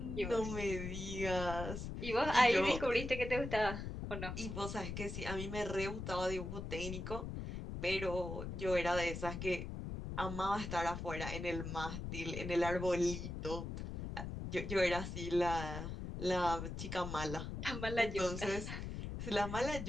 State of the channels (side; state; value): left; noise; rumble, 6 dB below the sound